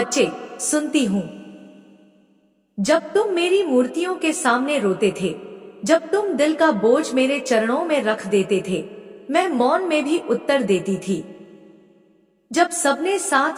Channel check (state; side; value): identical; both; correlation 1.00